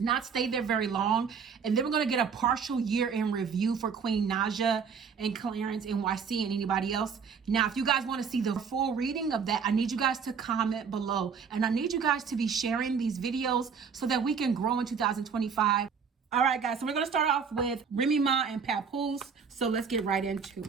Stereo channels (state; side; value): quieter; left; 6.2 dB